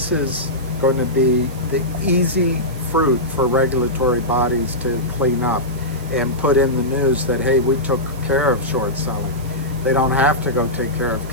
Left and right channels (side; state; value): right; noise; hiss, 21 dB below the sound